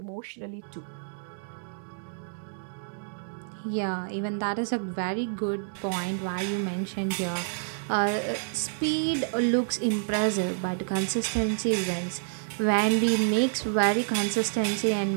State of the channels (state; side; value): silent; left; digital silence